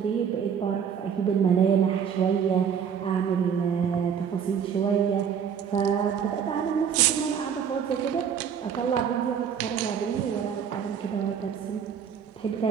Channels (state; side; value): quieter; left; 7.6 dB